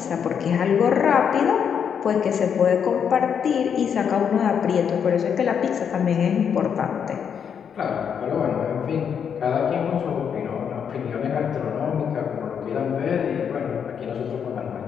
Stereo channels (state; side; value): quieter; right; 7.6 dB